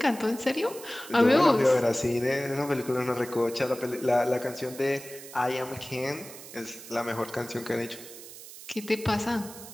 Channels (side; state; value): right; noise; hiss, 15 dB below the sound